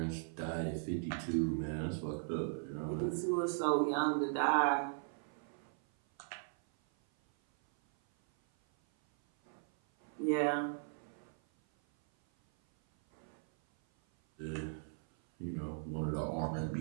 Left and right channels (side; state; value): left; silent; 52 dB below the other